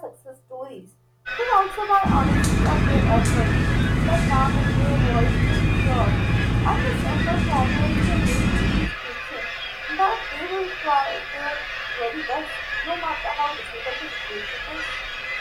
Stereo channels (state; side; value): identical; both; correlation 1.00